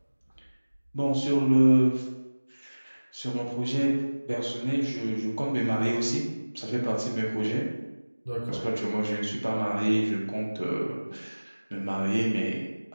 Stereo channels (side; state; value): both; inverted; correlation -1.00